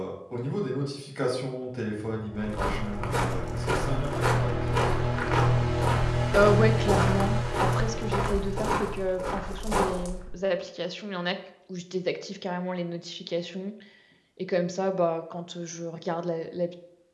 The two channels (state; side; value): identical; both; correlation 1.00